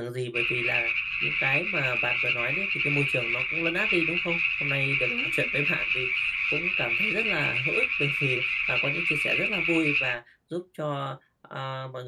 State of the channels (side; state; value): both; identical; correlation 1.00